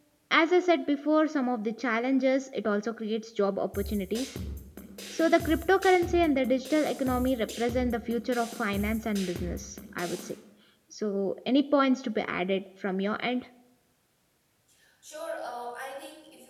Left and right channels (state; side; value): identical; both; correlation 1.00